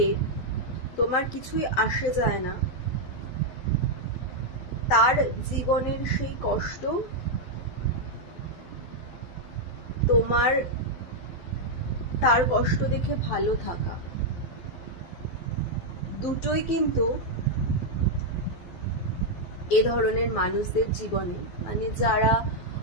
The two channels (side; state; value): right; late; 12 ms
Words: তোমার কিছুই আসে যায় না, তার জীবনের সেই কষ্ট তোমার তার কষ্ট দেখে ভালো থাকা, দুটোই কিন্তু এ ধরনের মানুষদের জীবনে, মানে যারা